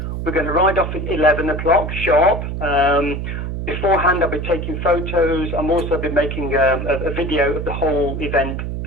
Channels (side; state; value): right; noise; hum, 4 dB below the sound